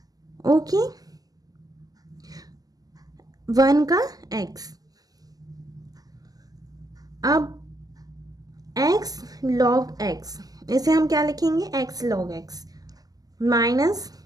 ओके, 1 का x। अब x log x, इसे हम क्या लिखेंगे? x log x minus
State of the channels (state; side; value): late; left; 0.18 ms